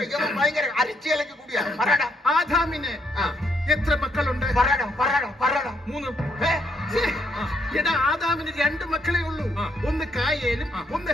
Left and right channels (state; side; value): normal; both; correlation 0.73